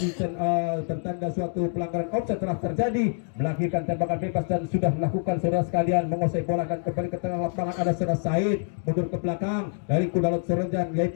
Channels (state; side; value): silent; right; 59 dB below the other